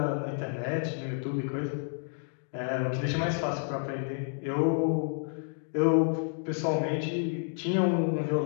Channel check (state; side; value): silent; right; 58 dB below the other